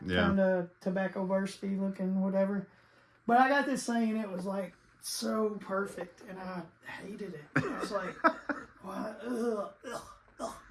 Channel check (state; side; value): identical; both; correlation 1.00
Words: kind of tobacco bursty looking, whatever. But I got this thing, and it was like so perfect, and I hated it. I was like, what? Ugh.